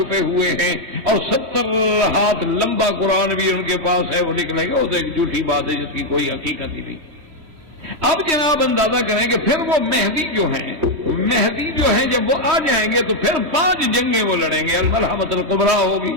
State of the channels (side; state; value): left; late; 3.0 ms